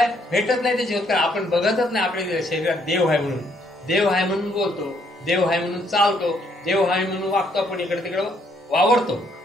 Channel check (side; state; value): both; normal; correlation 0.69